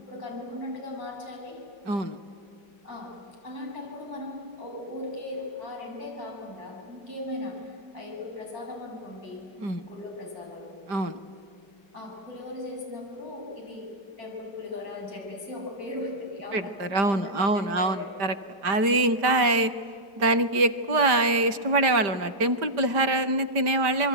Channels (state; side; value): late; left; 5.0 ms